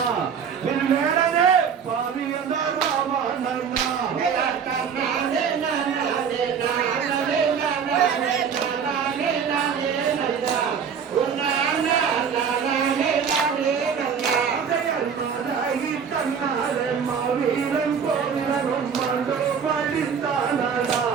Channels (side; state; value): left; quieter; 6.9 dB